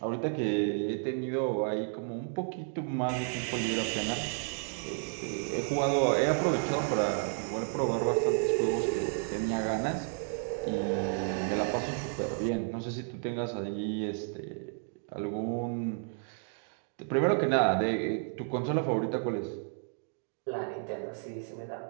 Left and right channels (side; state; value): left; silent; 56 dB below the other